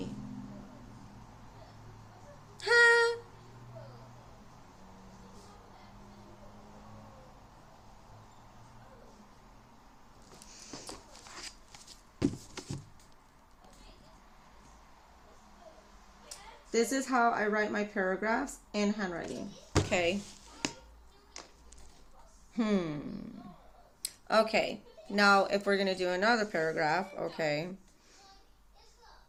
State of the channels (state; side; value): identical; both; correlation 1.00